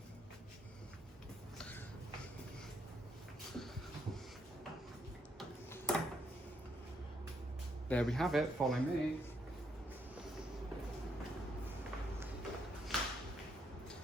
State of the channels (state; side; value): normal; both; correlation 0.74